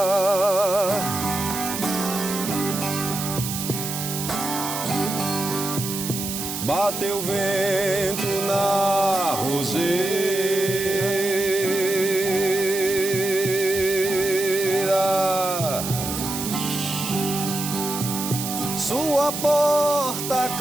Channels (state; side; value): noise; right; hiss, 5 dB below the sound